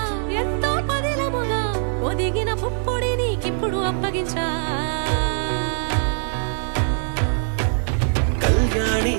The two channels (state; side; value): silent; left; digital silence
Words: ఎంతో పదిలముగా ఒదిగిన పుప్పొడి నీకిప్పుడు అప్పగించా కళ్యాణి